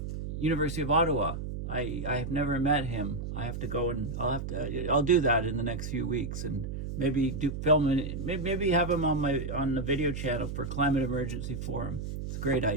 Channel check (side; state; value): right; noise; hum, 5 dB below the sound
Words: University of Ottawa. I have never met him. I have to go and I'll do that in the next few weeks, and maybe film it. Maybe have him on the video channel for Climate Emergency Forum. It's a great